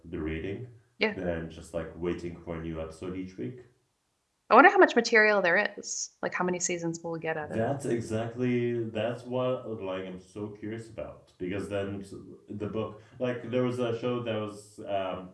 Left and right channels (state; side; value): identical; both; correlation 1.00